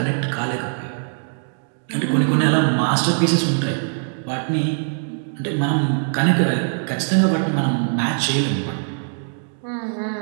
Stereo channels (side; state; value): left; silent; digital silence